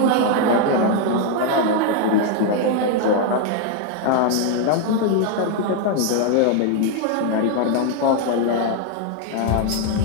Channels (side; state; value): both; different; correlation 0.00